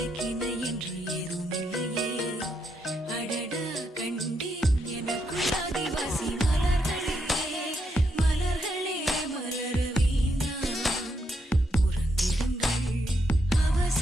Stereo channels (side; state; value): both; normal; correlation 0.79